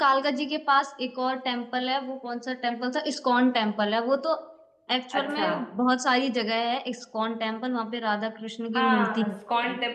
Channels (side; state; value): both; identical; correlation 1.00